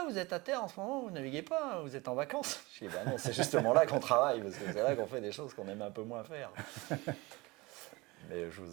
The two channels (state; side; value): quieter; left; 23.2 dB